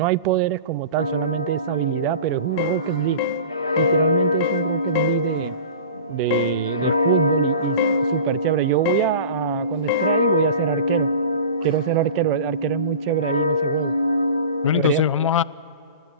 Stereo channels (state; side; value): inverted; both; correlation -0.37